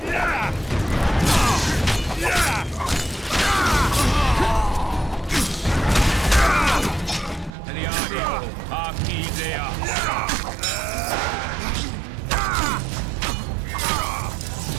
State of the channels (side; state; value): left; drops out; at 7.5 s